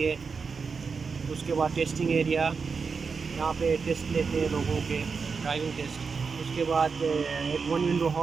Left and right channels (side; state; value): left; quieter; 5.2 dB